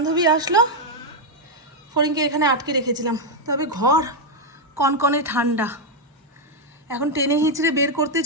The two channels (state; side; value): normal; both; correlation 0.00